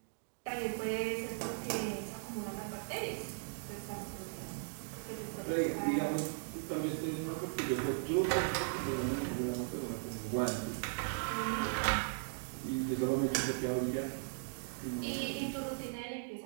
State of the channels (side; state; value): left; silent; digital silence